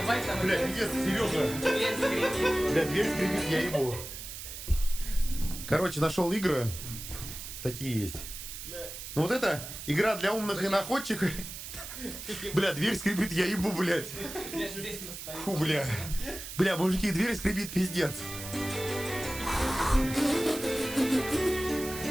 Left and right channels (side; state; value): right; noise; hiss, 10 dB below the sound